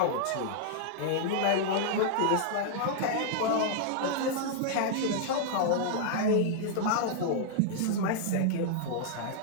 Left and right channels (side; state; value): both; different; correlation -0.01